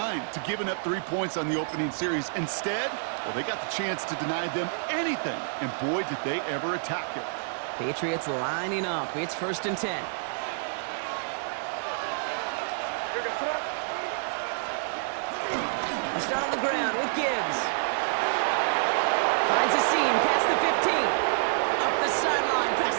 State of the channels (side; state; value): left; silent; 56 dB below the other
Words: to giving up 3 points on the opening series. Instead, well, they got the chance to deny them anything, and boy, did they ever attack it. Patriots lining up. It's 1st and 10. They'll start on the ground with Gibbs. Finds a seam past the 15. Up the sideline